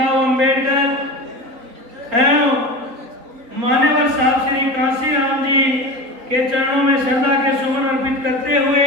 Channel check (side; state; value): left; late; 3.8 ms